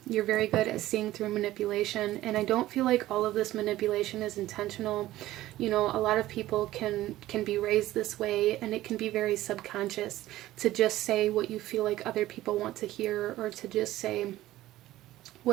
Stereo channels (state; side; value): quieter; left; 15.5 dB